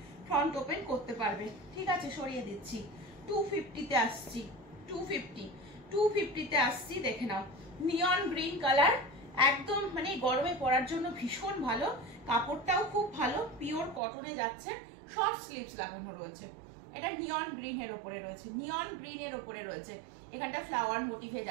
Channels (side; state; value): left; drops out; at 14.0 s